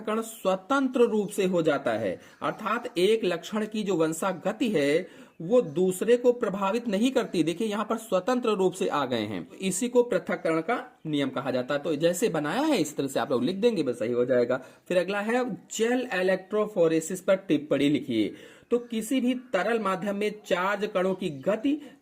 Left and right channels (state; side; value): identical; both; correlation 1.00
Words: स्वतंत्र रूप से हो जाता है, अर्थात एक लक्षण की जो वंशागति है वो दूसरे को प्रभावित नहीं करती। देखिए यहां पर स्वतंत्र रूप से आ गए हैं, इसी को पृथक्करण का नियम कहा जाता है। तो जैसे बनाया है इस तरह से आप लोग लिख देंगे, बस सही हो जाएगा। फिर अगला है जेल इलेक्ट्रोफोरेसिस पर टिप्पणी लिखिए। तो किसी भी तरल माध्यम में चार्ज कणों की गति